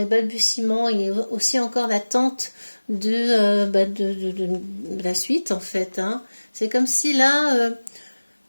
balbutiements, il y a aussi encore l'attente de la suite en fait, hein. C'est comme si là,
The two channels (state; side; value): inverted; both; correlation -1.00